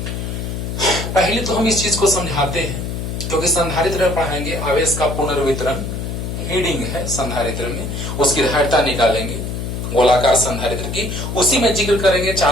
पहले तो हम इस चीज को समझाते हैं, क्योंकि संधारित्र में पढ़ाएंगे आवेश का पुनर्वितरण, हीडिंग है संधारित्र में, उसकी धारिता निकालेंगे गोलाकार संधारित्र की, उसी में जिक्र करेंगे।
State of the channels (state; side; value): noise; left; hum, 5 dB below the sound